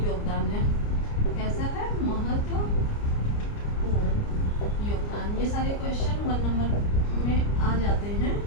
योगदान है। कैसा है? महत्वपूर्ण योगदान। ये सारे क्वेश्चन 1 नंबर में आ जाते हैं।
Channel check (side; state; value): right; late; 29 ms